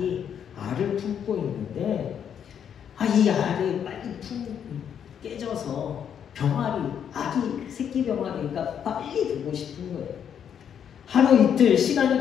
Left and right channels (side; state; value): right; quieter; 8.4 dB